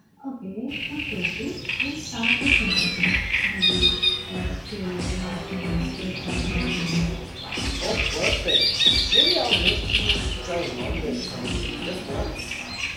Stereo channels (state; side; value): identical; both; correlation 1.00